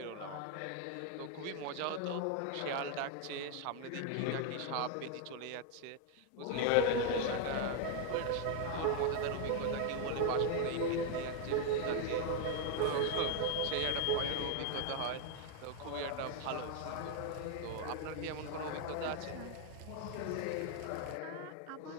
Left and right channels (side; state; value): both; different; correlation 0.00